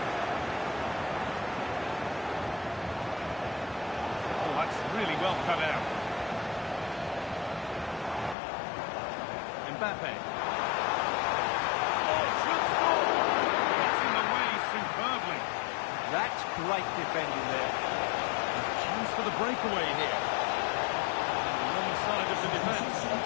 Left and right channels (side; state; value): right; drops out; at 8.3 s